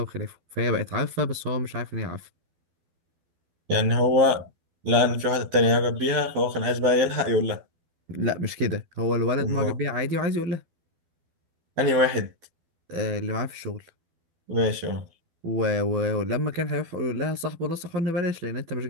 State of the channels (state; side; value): late; left; 12 ms